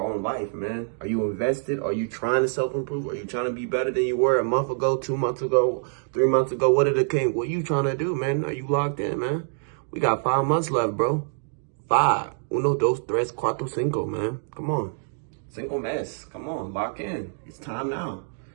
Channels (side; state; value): left; silent; digital silence